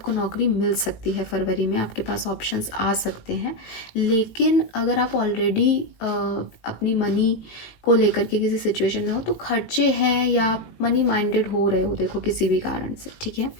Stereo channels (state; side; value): late; right; 18 ms